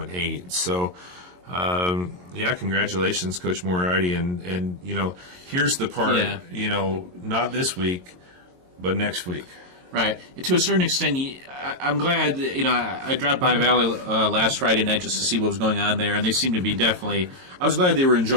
So, congratulations, Coach Moriarty. And here's the part. Not this week, but next week. Right. To a certain extent, I'm glad, I dropped by Valley last Friday night just to see what was going on there, and they seem to be definitely, I was glad they were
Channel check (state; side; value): late; left; 22 ms